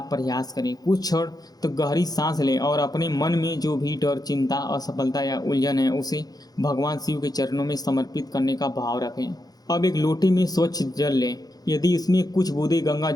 प्रयास करें। कुछ क्षण तो गहरी सांस लें और अपने मन में जो भी डर, चिंता, असफलता या उलझन है उसे भगवान शिव के चरणों में समर्पित करने का भाव रखें। अब एक लोटे में स्वच्छ जल लें। यदि इसमें कुछ बूंदे गंगा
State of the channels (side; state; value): right; late; 0.19 ms